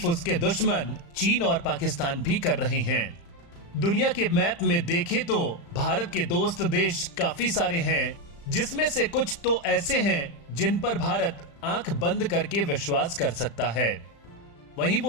उसके दुश्मन चीन और पाकिस्तान भी कर रहे हैं। दुनिया के मैप में देखें तो भारत के दोस्त देश काफी सारे हैं, जिसमें से कुछ तो ऐसे हैं जिन पर भारत आंख बंद करके विश्वास कर सकता है। वहीं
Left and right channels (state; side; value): late; right; 35 ms